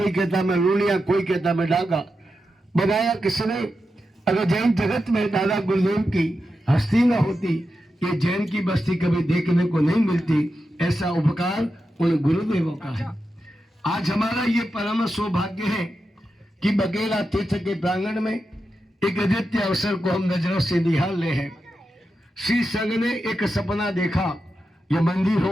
कहता मैं लूलिया, कोई कहता मैं डागा। बताया किसने? अगर जैन जगत में दादा गुरुदेव की हस्ती न होती, ये जैन की बस्ती कभी देखने को नहीं मिलती। ऐसा उपकार उन गुरुदेवों का है। आज हमारा ये परम सौभाग्य है कि बकेला तीर्थ के प्रांगण में एक अद्वितीय अवसर को हम नजरों से निहाल रहे हैं। श्री संघ ने एक सपना देखा, ये मंदिर हो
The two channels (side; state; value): both; normal; correlation 0.89